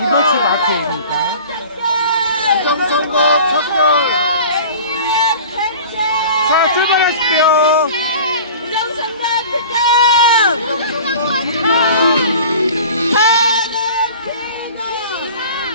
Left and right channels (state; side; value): inverted; both; correlation -0.41